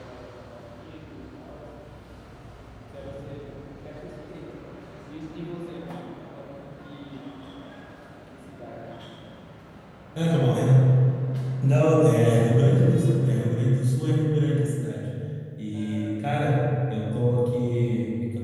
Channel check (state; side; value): identical; both; correlation 1.00